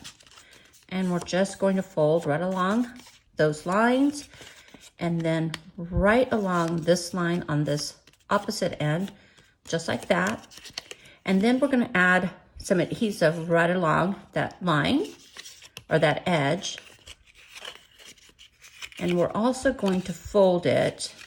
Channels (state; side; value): identical; both; correlation 1.00